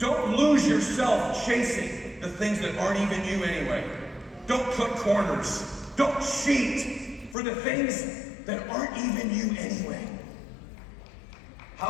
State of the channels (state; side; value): drops out; right; at 7.4 s